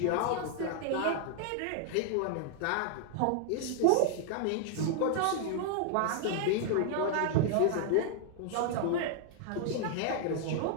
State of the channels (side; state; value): both; different; correlation 0.00